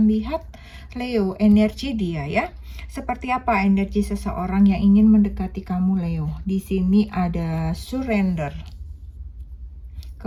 lihat Leo, energi dia ya. Seperti apa energi seseorang yang ingin mendekati kamu Leo? Di sini ada surrender.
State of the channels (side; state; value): both; identical; correlation 1.00